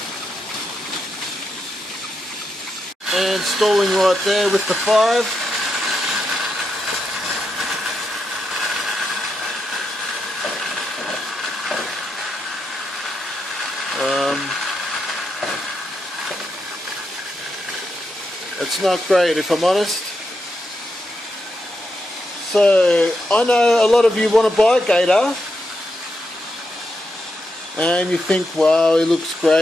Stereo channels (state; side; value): normal; both; correlation 0.84